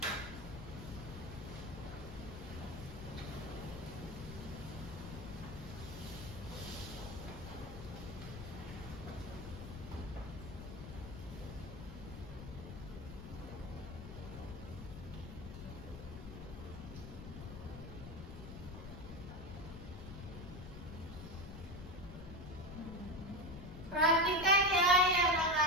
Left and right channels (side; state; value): left; noise; rumble, 10 dB below the sound